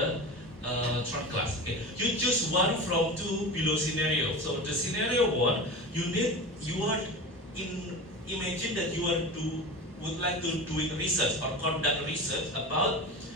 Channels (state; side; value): normal; both; correlation 0.29